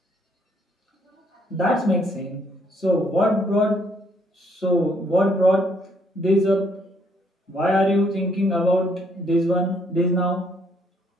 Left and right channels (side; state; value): both; normal; correlation 0.68